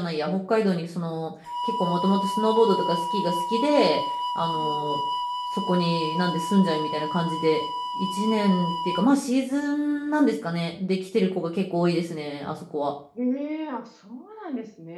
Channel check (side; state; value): both; identical; correlation 1.00